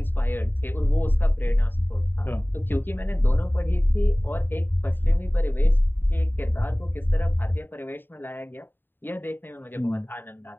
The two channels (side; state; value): right; late; 0.095 ms